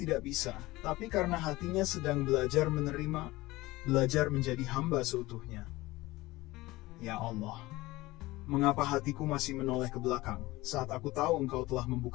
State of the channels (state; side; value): quieter; right; 19.5 dB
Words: bisa, tapi karena hatinya sedang belajar menerima, belajar menjadi hamba seutuhnya. Ya Allah, mengapa hatiku masih menoleh ke belakang saat aku tahu Engkau telah